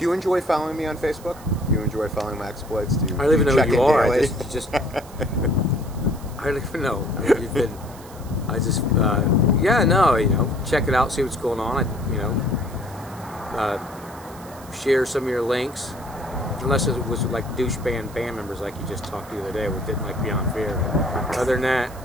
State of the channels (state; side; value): noise; right; hiss, 21 dB below the sound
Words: you enjoy following me on Facebook? Do you enjoy follling my exploits? I don't even know who you are. Daily? I don't even know. I mean, you've been. Check it out, see what's going on. Share some of your links. Unless it was like douche band members like you just talked to the other day, which didn't like Beyond Fear. But other than that,